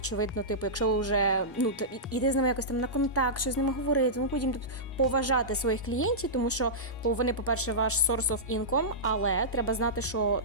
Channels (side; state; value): both; normal; correlation -0.15